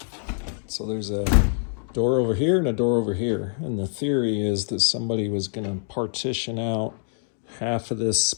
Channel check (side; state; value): right; silent; digital silence